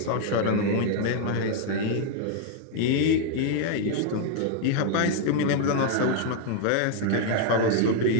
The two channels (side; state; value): both; different; correlation 0.00